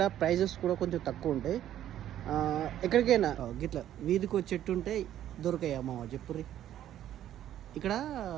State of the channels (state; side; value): quieter; left; 11.7 dB